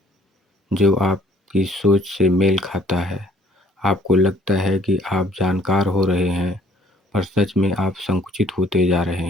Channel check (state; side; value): normal; both; correlation 0.60